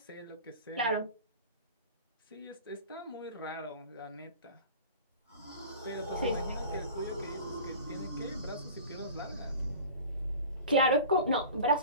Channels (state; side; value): inverted; both; correlation -0.38